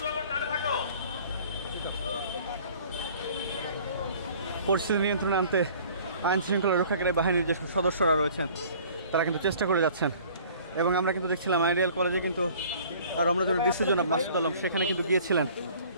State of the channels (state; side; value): inverted; both; correlation -0.51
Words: পরিস্থিতি নিয়ন্ত্রণে আনতে আইন শৃঙ্খলা রক্ষাকারী বাহিনীর যে সদস্যরা রয়েছেন তারা কিন্তু চেষ্টা করে যাচ্ছেন। এবং আমরা কিন্তু দেখছিলাম আইডিয়াল কলেজে কিন্তু রমনাজনের ডিসি জনাব মাসুদ আলম সেখানে কিন্তু গিয়েছিলেন